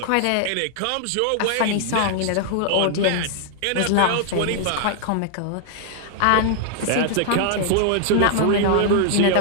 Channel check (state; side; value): different; both; correlation 0.00